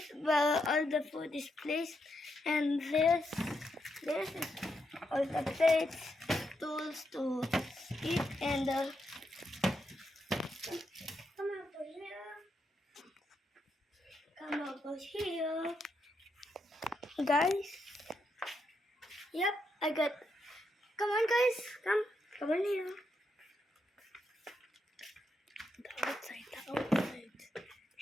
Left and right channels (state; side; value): normal; both; correlation 0.81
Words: where all the food is placed. And this is all the plates, tools to eat, and come over here. Come over here. Guys. Yep, I got. Come on, guys. Come on here. The outside.